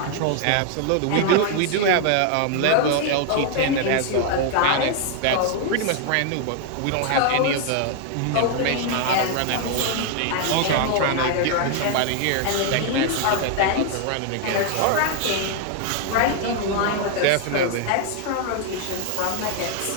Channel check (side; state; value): both; different; correlation 0.00